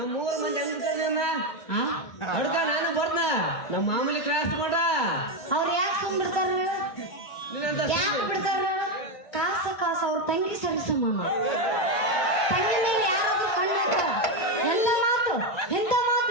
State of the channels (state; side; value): late; right; 1.2 ms